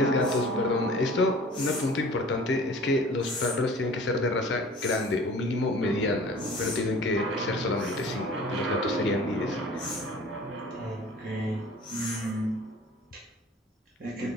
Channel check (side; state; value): both; normal; correlation 0.46